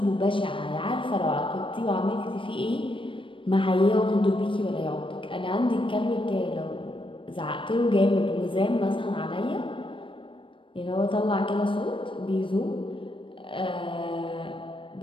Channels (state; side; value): late; right; 0.25 ms